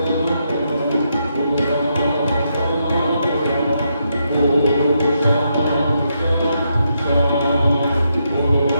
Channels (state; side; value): inverted; both; correlation -0.80